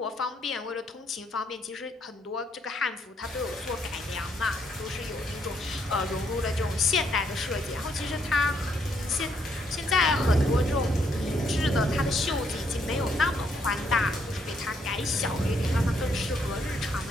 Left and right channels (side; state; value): both; normal; correlation 0.73